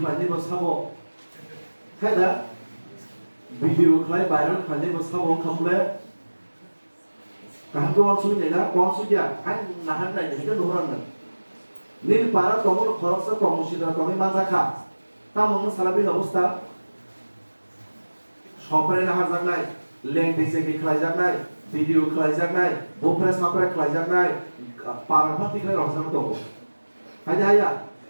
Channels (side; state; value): both; inverted; correlation -1.00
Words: bersabo kayak video klip viral klipnya bersabo kamu kan tuh langsung ni lah langsung ya kan nahan lagi kan orang ni barang tong kalau tong sidram tong bangsa kah তামন সালাবির অবস্থা সপরে না হাজার নাই লেং দিছে কি খাইজাক নাই ভিডিও খাইজাক নাই বোফরে সাপরে খাইজাক নাই পারাফা তিখলে রহজান তো হাইদা হাইয়া